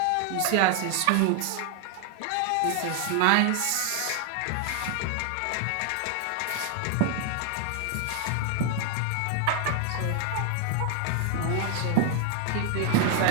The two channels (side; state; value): both; different; correlation 0.00